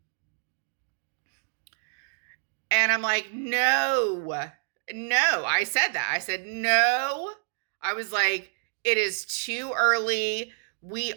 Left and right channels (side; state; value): left; silent; digital silence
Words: And I'm like, no. I said that. I said, no. I was like, it is too early. We